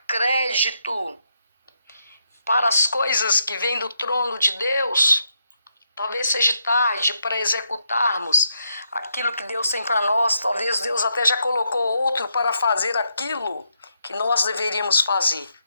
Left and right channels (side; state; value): both; inverted; correlation -0.79